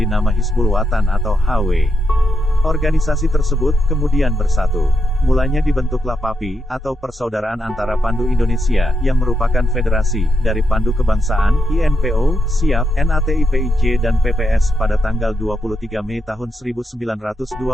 nama Hizbul Wathan atau HW. Organisasi tersebut kemudian bersatu. Mulanya dibentuklah PAPI, atau Persaudaraan Antara Pandu Indonesia, yang merupakan federasi dari Pandu Kebangsaan, INPO, SIAP, NATIPIJ dan PPS pada tanggal 23 Mei tahun 1928.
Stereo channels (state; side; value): normal; both; correlation 0.83